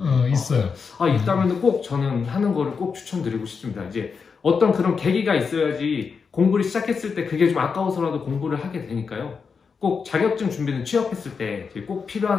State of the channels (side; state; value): right; quieter; 5.6 dB